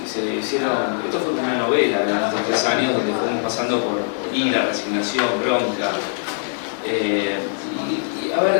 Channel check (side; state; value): right; silent; 65 dB below the other